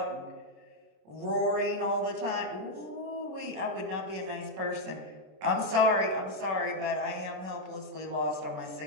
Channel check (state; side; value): late; left; 26 ms